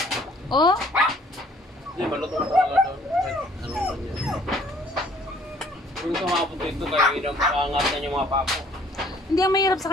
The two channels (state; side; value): normal; both; correlation 0.58